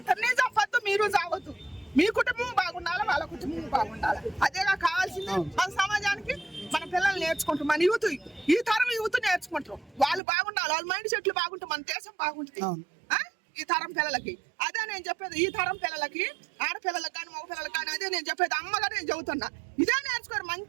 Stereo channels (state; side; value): drops out; left; at 10.2 s